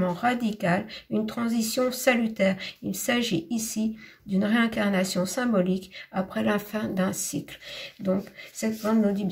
radical, une transition salutaire. Il s'agit ici d'une réincarnation symbolique après la fin d'un cycle. Donc, cette plante nous dit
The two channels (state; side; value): identical; both; correlation 1.00